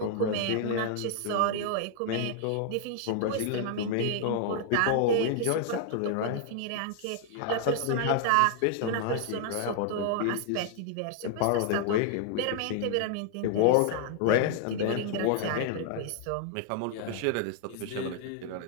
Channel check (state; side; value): different; both; correlation -0.01